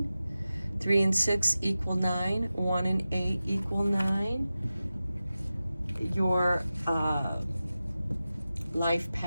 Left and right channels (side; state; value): both; inverted; correlation -0.94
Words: 3 and 6 equal 9. 1 and 8 equal 9. Your life